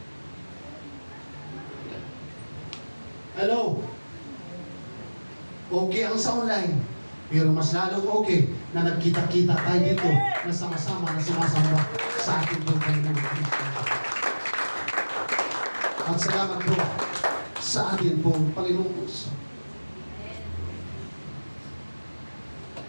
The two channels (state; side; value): inverted; both; correlation -1.00